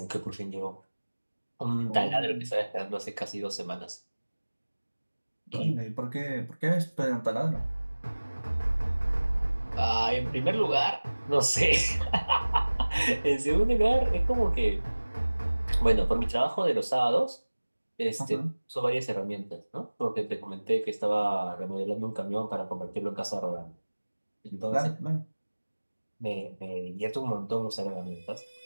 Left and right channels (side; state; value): both; inverted; correlation -1.00